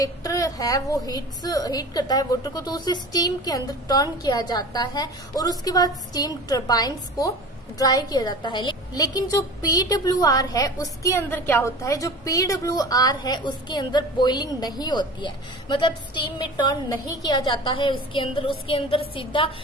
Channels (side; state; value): both; normal; correlation 0.37